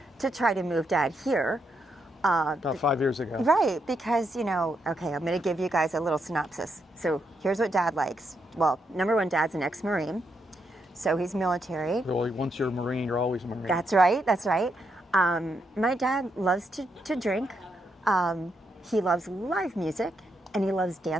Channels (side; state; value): both; normal; correlation 0.80